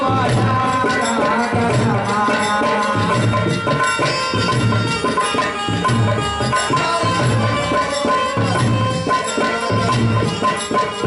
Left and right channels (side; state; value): both; identical; correlation 1.00